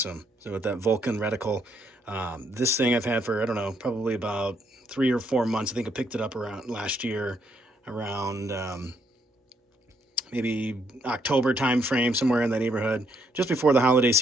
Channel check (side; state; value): both; normal; correlation 0.72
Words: So with that Vulcan reticle, this thing I've had for, I don't know, probably about 3 or 4 months. I think I picked it up around last year, around maybe October time frame, somewhere in that neighborhood, just before the holiday